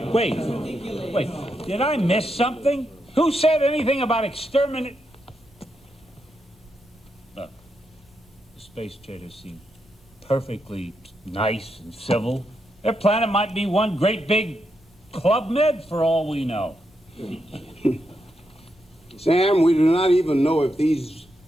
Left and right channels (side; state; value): both; normal; correlation 0.83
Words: Wait. Did I miss something? Who said anything about exterminate? Look, the space traders seem perfectly nice and civil. Their planet might be one great big Club Med for all we know. Sam, we do not even know if these